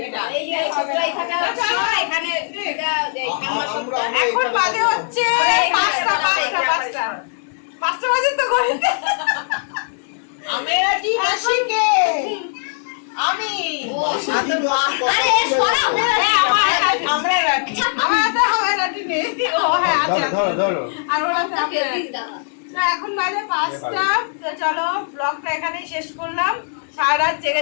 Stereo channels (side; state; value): right; silent; digital silence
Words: টান। এখন বাজে হচ্ছে 5টা বাজে তো ঘড়িতে। আমেরা কি মাসিকে আমি আরে সরাও না। আমরা রাখি। আমার হাতে হবে না ঠিক নেই। ও হ্যাঁ আছে আছে। ধরো আর ওর হাতে আছে। তো এখন বাজে 5টা। তো চলো ব্লগটা এখানেই শেষ করলাম। সারা রাত